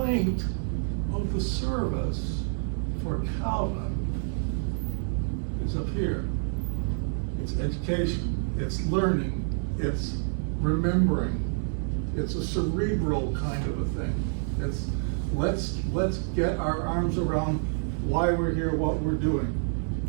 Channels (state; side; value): silent; left; digital silence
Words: of the service for Calvin is up here. It's education, it's learning, it's remembering. It's a cerebral kind of a thing. It's let's get our arms around why we're here, what we're doing.